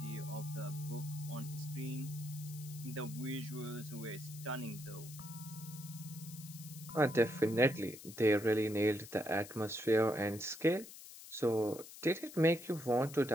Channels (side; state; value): left; noise; hiss, 15 dB below the sound